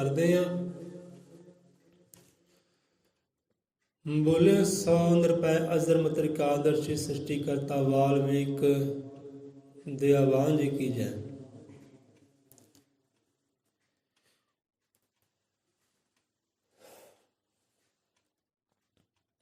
ਹਾਂ। ਬੋਲੇ ਸੋ ਨਿਰਭੈ ਅਜ਼ਰ ਤ੍ਰਿਕਾਲਦਰਸ਼ੀ, ਸ੍ਰਿਸ਼ਟੀ ਕਰਤਾ ਵਾਲਮੀਕ ਦੇ ਆਵਾਨ ਜੀ ਕੀ ਜੈ।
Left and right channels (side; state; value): both; identical; correlation 1.00